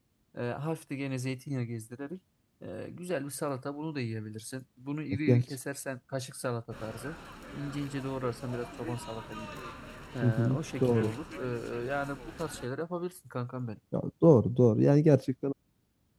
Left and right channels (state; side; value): identical; both; correlation 1.00